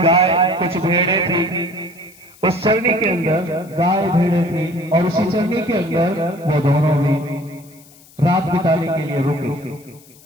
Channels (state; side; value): noise; left; hiss, 25 dB below the sound